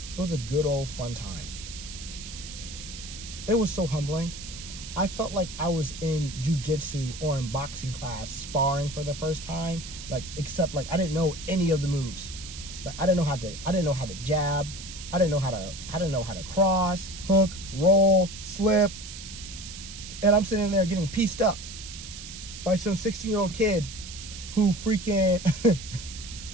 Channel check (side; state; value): right; noise; hiss, 12 dB below the sound